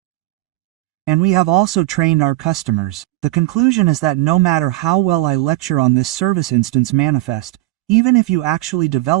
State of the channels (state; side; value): quieter; left; 17.6 dB